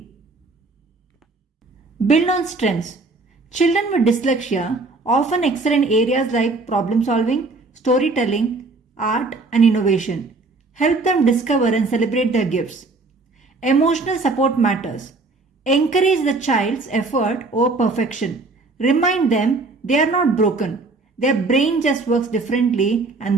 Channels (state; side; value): quieter; left; 3.6 dB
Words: Build on strengths. Children with dyslexia often excel in areas like problem solving, storytelling, art, and innovation. Help them discover and celebrate their gifts. Emotional support matters. Encourage the child's effort over perfection. Remind them they are not broken Their brain just works differently,